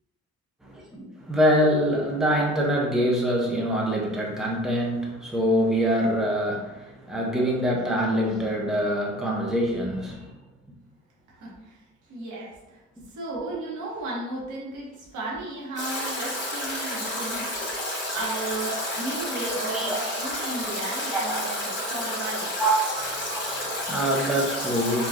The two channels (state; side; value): normal; both; correlation 0.37